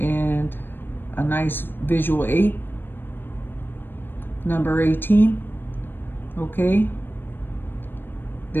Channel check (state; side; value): late; right; 0.097 ms